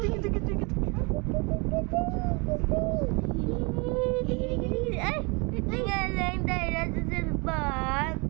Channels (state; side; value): quieter; left; 30.1 dB